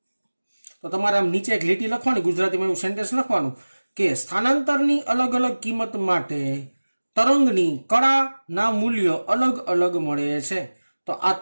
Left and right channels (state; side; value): inverted; both; correlation -1.00